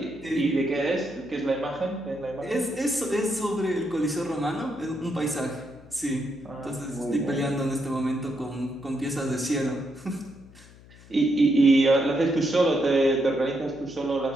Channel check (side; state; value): left; noise; hum, 22 dB below the sound